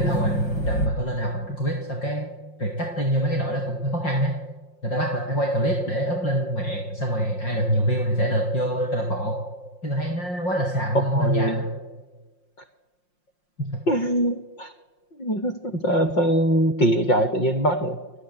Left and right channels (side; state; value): right; late; 5.6 ms